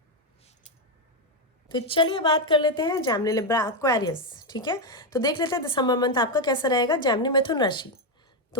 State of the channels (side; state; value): both; normal; correlation 0.06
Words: तो चलिए बात कर लेते हैं जैमिनी, लिब्रा, एक्वेरियस। ठीक है, तो देख लेते हैं दिसंबर मंथ आपका कैसा रहेगा। जैमिनी, मिथुन राशि।